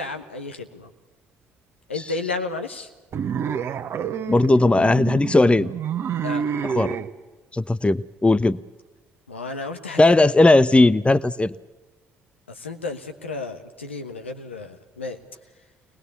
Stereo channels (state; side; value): normal; both; correlation 0.87